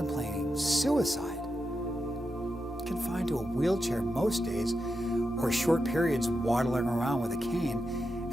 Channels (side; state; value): both; normal; correlation 0.87